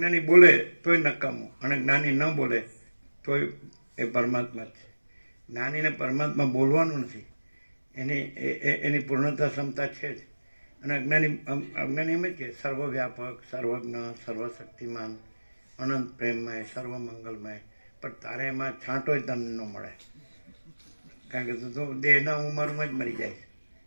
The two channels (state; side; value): inverted; both; correlation -1.00